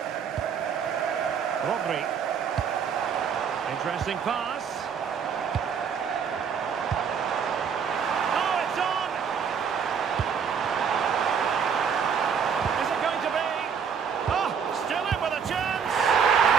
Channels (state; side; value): quieter; left; 6.9 dB